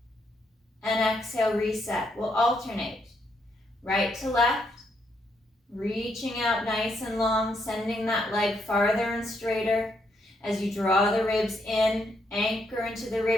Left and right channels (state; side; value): normal; both; correlation 0.76